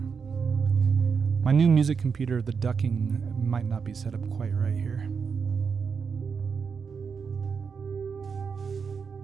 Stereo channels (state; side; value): quieter; left; 5.8 dB